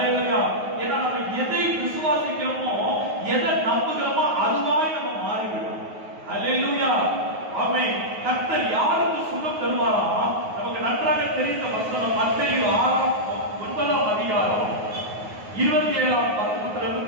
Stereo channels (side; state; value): left; late; 9.4 ms